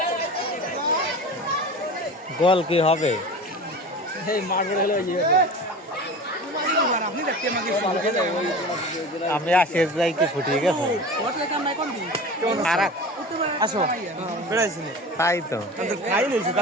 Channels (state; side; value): normal; both; correlation 0.34